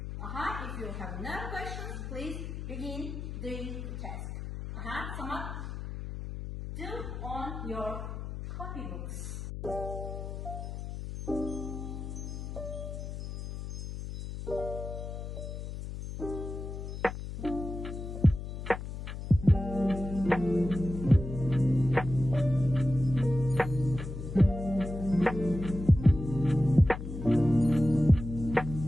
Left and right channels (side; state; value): left; noise; hum, 7 dB below the sound